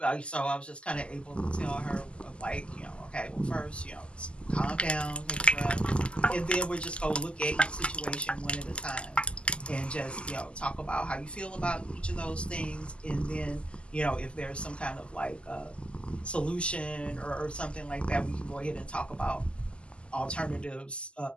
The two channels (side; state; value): right; late; 0.053 ms